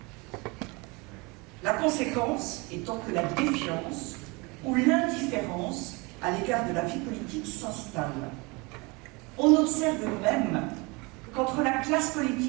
La conséquence étant que la défiance ou l'indifférence à l'égard de la vie politique s'installe. On observe même qu'entre la classe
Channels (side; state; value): left; quieter; 27.0 dB